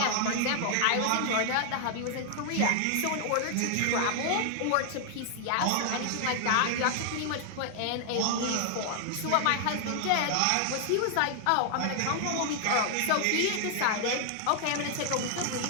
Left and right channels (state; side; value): different; both; correlation 0.00